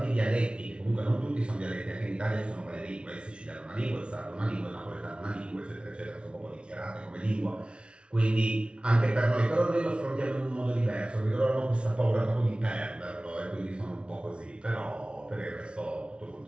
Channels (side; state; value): left; late; 0.058 ms